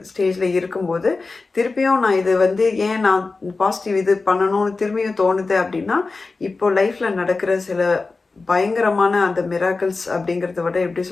ஸ்டேஜில் இருக்கும்போது திருப்பியும் நான் இது வந்து ஏன் நான் பாசிட்டிவ் இது பண்ணணும்னு திரும்பியும் தோணுது அப்படின்னா, இப்போ லைஃப்பில் நடக்கிற சில பயங்கரமான அந்த மிராக்கிள்ஸ் அப்படிங்கிறத விட எப்படி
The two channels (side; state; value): right; quieter; 3.9 dB